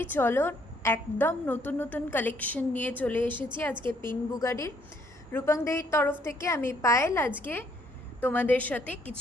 চলো একদম নতুন নতুন কালেকশন নিয়ে চলে এসেছি আজকে পিন বুগাডির। রূপাংদেহীর তরফ থেকে আমি পায়েল আজকে তোমাদের সাথে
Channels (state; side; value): normal; both; correlation 0.68